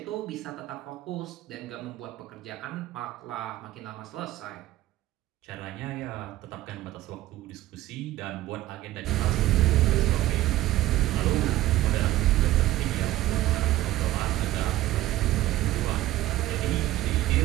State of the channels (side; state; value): left; quieter; 15.6 dB